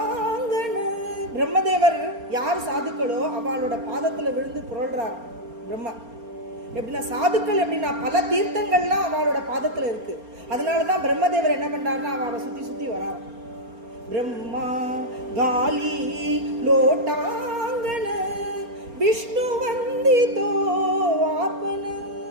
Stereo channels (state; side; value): late; left; 4.3 ms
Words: பிரம்மதேவர் யார் சாதுக்களோ அவளோட பாதத்துல விழுந்து புரள்றார் பிரம்மா. எப்படின்னா சாதுக்கள் எப்படின்னா பல தீர்த்தங்கள்லாம் அவளோட பாதத்துல இருக்கு. அதனாலதான் பிரம்மதேவர் என்ன பண்றாருன்னா அவளை சுத்தி சுத்தி வரார். பிரம்மா காலி லோட்டாங்கன விஷ்ணு வந்தித்தோ ஆப்பன.